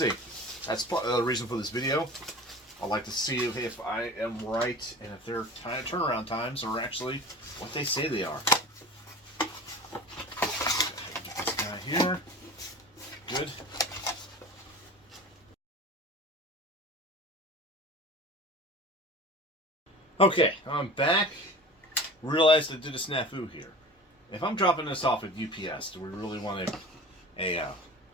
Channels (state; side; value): normal; both; correlation 0.38